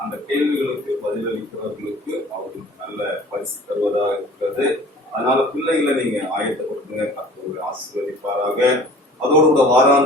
அந்த கேள்விகளுக்கு பதிலளிக்கிறவர்களுக்கு அவர்களுக்கு நல்ல பரிசு தருவதாக இருக்கிறது. அதனால பிள்ளைகளை நீங்க ஆயத்தப்படுத்துங்க, கர்த்தர் ஆசீர்வதிப்பாராக. அதோடு கூட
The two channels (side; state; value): both; normal; correlation 0.47